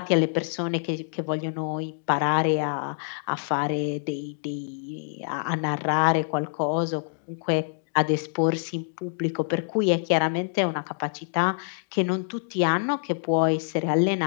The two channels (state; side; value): silent; right; digital silence